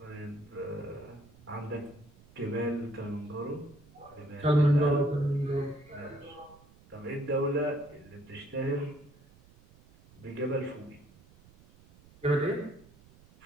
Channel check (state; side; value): noise; right; rumble, 25 dB below the sound